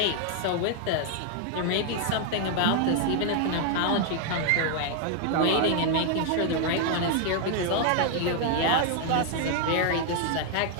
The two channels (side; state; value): both; different; correlation 0.00